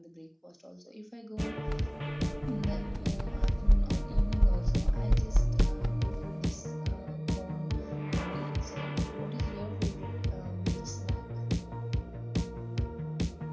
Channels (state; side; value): identical; both; correlation 1.00